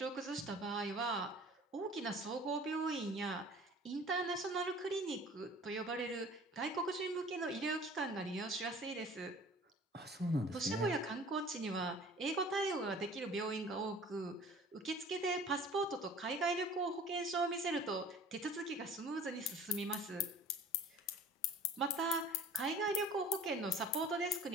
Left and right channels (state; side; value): normal; both; correlation 0.46